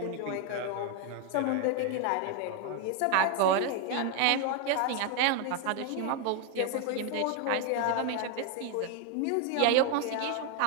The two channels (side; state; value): both; different; correlation 0.01